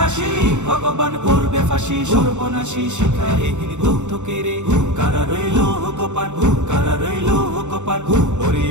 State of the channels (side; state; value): left; late; 0.84 ms